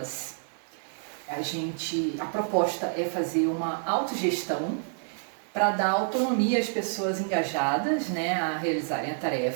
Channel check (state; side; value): silent; left; digital silence